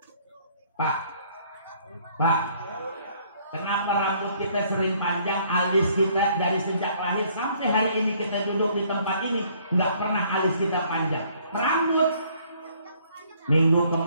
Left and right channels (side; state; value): both; inverted; correlation -0.62